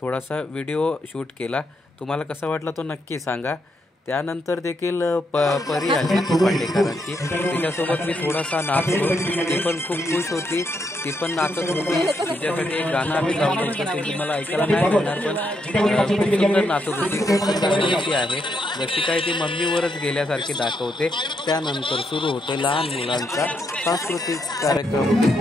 थोडासा व्हिडिओ शूट केला, तुम्हाला कसा वाटला तो नक्की सांगा। त्यानंतर देखील परी आली पांडेकरांची, तिच्यासोबत मी थोडासा नाचलो, ती पण खूप खुश होती, ती पण नाचत होती। तिच्यासाठी एक गाणं आम्ही लावलं होतं, ते तुम्हाला ऐकायला नाही मिळणार, पण खूप सुंदर नाचत होती, खूप सुंदर आहे, जशी काय ती मम्मीवरच गेल्यासारखी दाखवते। त्यानंतर सुरू होते लहान मुलांचा सांस्कृतिक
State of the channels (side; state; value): both; normal; correlation 0.78